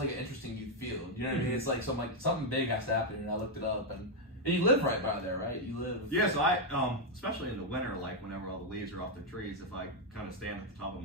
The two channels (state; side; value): normal; both; correlation 0.00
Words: an interesting youth field. You know what I mean? It's like something big has to happen, and I looked it up, and you live right by there, right? You live. Yeah, so I, especially in the winter, like whenever all the leaves are off the trees, if I kind of stand at the top of